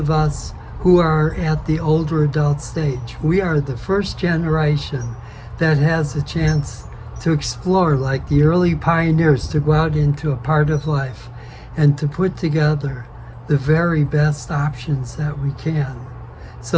us who are at the older adult stage, we are the first generation that has a chance to explore, like the early pioneers, to go out into a part of life and to put together the very best options that we can.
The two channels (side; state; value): both; identical; correlation 1.00